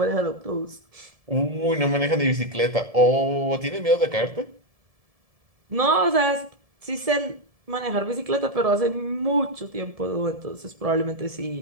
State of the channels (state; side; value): late; left; 1.7 ms